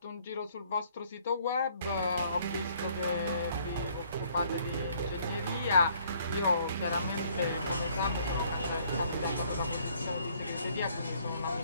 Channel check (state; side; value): inverted; both; correlation -0.62